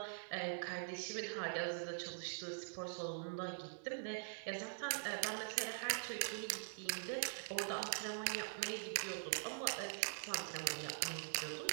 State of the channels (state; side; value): silent; left; digital silence